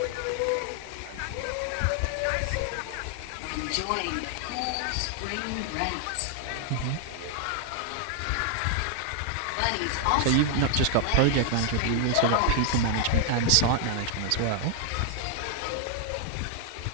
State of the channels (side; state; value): both; different; correlation 0.00